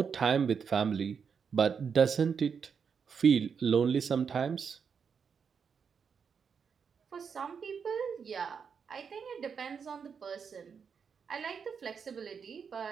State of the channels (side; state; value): left; quieter; 6.4 dB